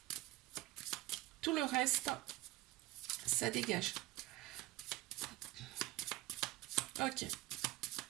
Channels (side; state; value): left; quieter; 17.4 dB